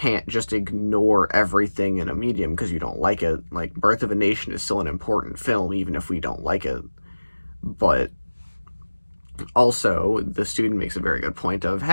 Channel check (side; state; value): both; inverted; correlation -1.00